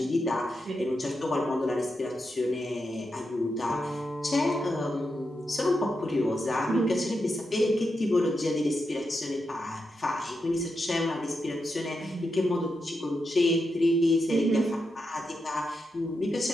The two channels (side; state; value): both; normal; correlation 0.86